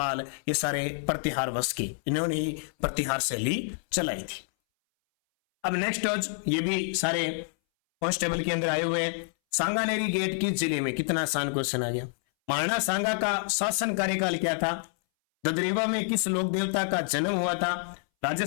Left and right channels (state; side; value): silent; right; 59 dB below the other